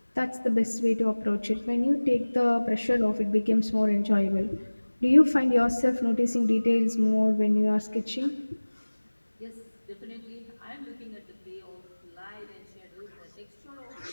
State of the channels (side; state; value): both; inverted; correlation -1.00